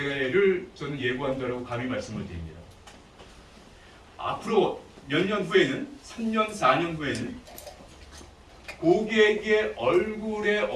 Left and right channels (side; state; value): both; identical; correlation 1.00